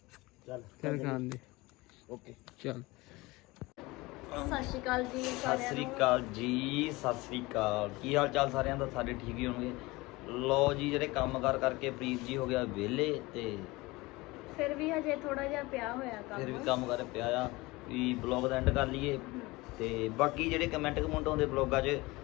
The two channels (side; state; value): right; quieter; 22.0 dB